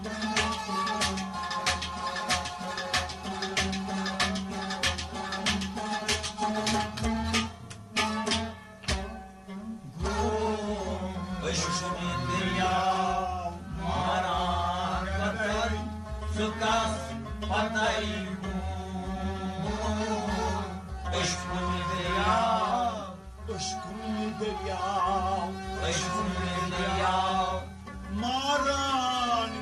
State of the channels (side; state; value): both; identical; correlation 1.00